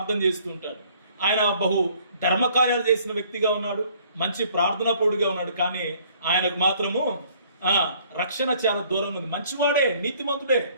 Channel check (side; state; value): both; inverted; correlation -0.59